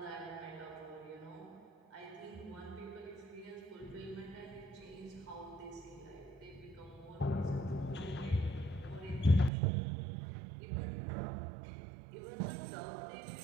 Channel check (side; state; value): left; drops out; at 9.5 s